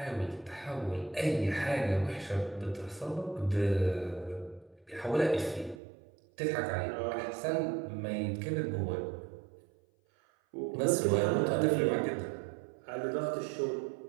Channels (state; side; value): drops out; left; at 5.8 s